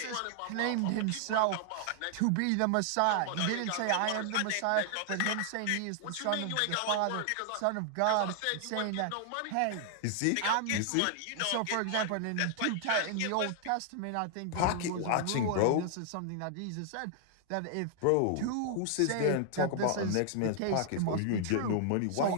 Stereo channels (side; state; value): both; different; correlation 0.00